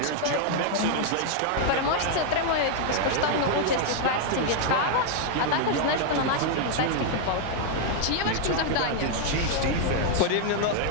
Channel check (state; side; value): different; both; correlation 0.00